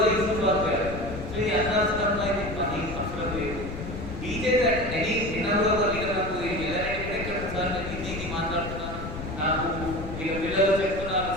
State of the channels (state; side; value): noise; left; rumble, 8 dB below the sound